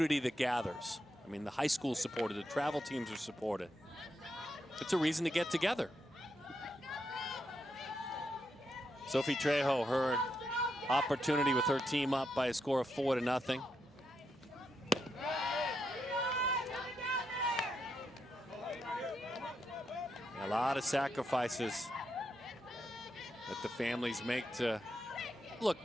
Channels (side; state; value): both; normal; correlation 0.82